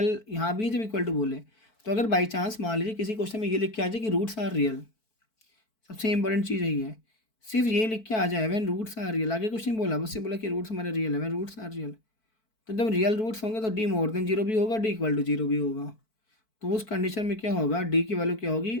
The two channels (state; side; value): late; right; 4.5 ms